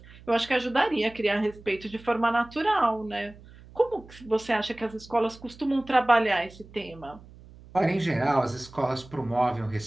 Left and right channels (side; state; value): right; noise; hum, 21 dB below the sound